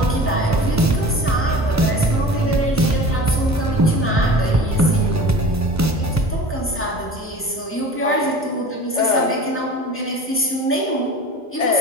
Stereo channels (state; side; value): normal; both; correlation 0.38